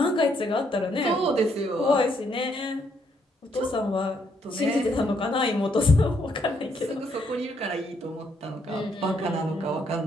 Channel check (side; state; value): both; normal; correlation 0.73